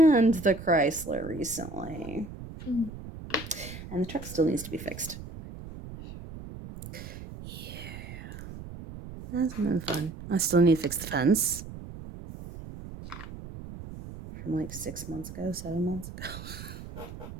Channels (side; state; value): right; noise; rumble, 12 dB below the sound